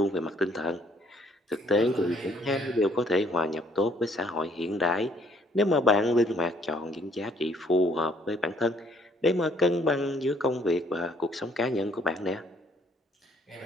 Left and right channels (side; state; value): both; normal; correlation 0.64